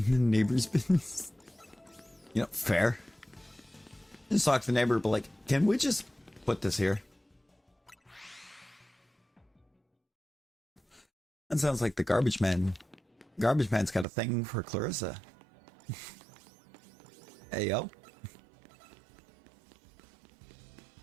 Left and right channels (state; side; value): drops out; left; at 14.1 s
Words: the neighbor's business. You know, fair. Just talk to the neighbor, but like, can we just put this here? That sounds like the garbage man. Garbage man's got a thing for Clarissa. Hey, yo.